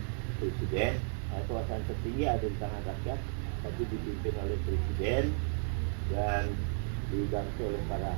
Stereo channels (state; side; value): silent; left; 55 dB below the other